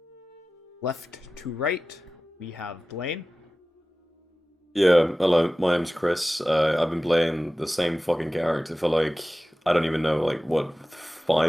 left to right. We have Blaine. Yeah, hello, my name's Chris. I've been playing the same fucking character for I don't even know,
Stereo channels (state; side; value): normal; both; correlation 0.96